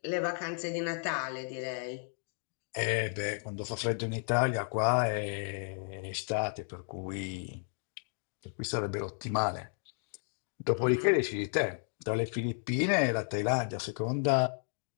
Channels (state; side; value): silent; right; 56 dB below the other